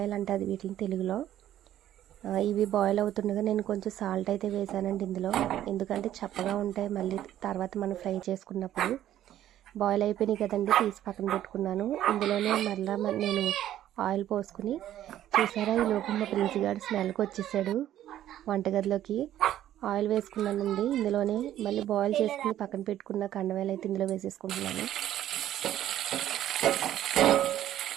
అంటే అది వీటిని తెలుగులో. ఇవి బాయిల్ అవుతుండగా నేను కొంచెం సాల్ట్ అయితే వేసానండి ఇందులో. ఎందుకంటే చప్పగా ఉంటాయి మళ్ళీ తర్వాత మనం ఫ్రై చేసుకున్నప్పుడు. బాయిల్ అయిపోయినాయి కదండి, తీసి పక్కన పెట్టుకున్నాను. ఇందులోనే మళ్ళీ నేను ఆయిల్ పోసుకుని, చూసారా ఈ లోపు మా ప్రిన్సిగాడు స్మెల్కి వచ్చేసాడు వంటగదిలోకి. ఆయిల్ వేసుకున్నానండి ఇందులోనే. మళ్ళీ బాయిల్ చేసుకుని పక్కన పెట్టుకున్న కండవేలు అయితే ఇందులో వేసేసుకుంటున్నాను.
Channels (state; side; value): quieter; left; 12.2 dB